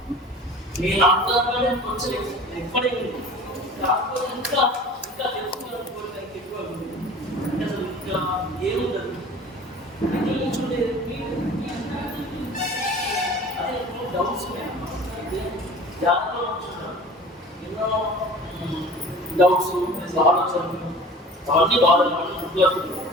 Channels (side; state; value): both; normal; correlation 0.42